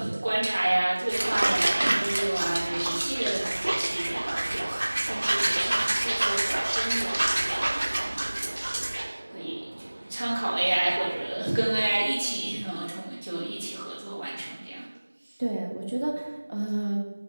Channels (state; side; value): inverted; both; correlation -1.00